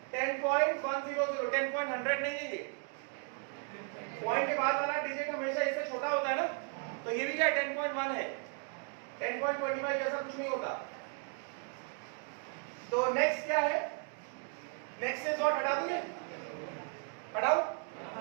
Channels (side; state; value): left; quieter; 38.8 dB